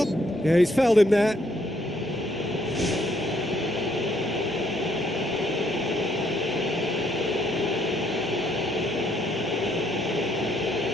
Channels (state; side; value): normal; both; correlation 0.70